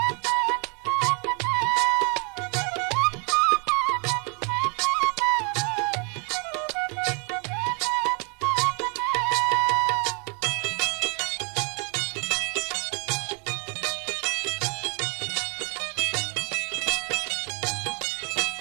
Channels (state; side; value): quieter; left; 34.1 dB